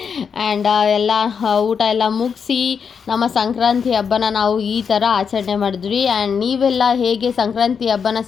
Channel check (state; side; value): quieter; right; 6.5 dB